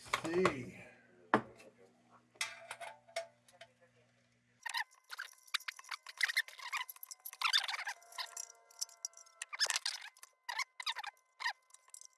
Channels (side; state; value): both; identical; correlation 1.00